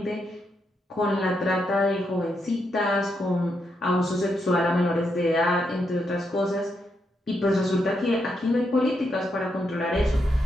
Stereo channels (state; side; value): normal; both; correlation 0.81